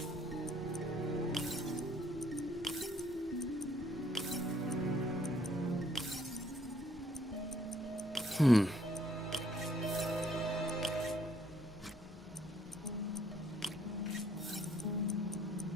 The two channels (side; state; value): both; normal; correlation 0.66